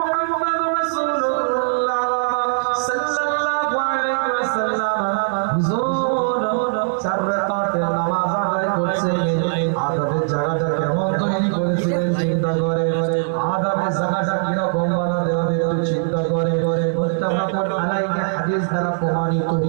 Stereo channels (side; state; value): left; silent; digital silence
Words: মুহাম্মদ রাসূলুল্লাহ সাল্লাল্লাহু আলাইহি ওয়াসাল্লাম হুজুর 4 রাকাতের নামাজ আদায় করছিলেন। আদাবের জায়গাটা কেমন তৈরি করেছিলেন চিন্তা করে, আদাবের জায়গাটা কি রকম বানাতে হবে একটু চিন্তা করে। মুত্তাফাকুন আলাইহি হাদিস দ্বারা প্রমাণিত,